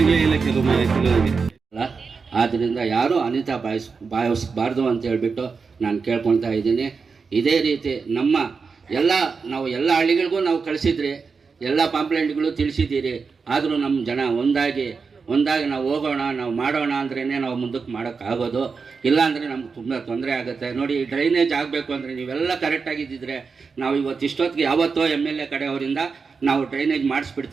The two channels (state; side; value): quieter; left; 5.1 dB